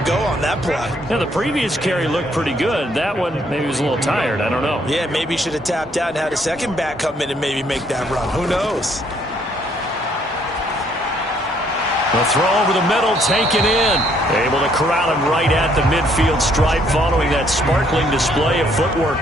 go on that play. Yeah, the previous carry looked pretty good. That one, maybe he was a little tired. I don't know. Yeah, maybe he should have tapped out and had a second back come in and maybe make that run. Who knows? The throw over the middle, taken in. Able to corral him right at the midfield stripe following that sparkling display of footwork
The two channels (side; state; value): both; normal; correlation 0.67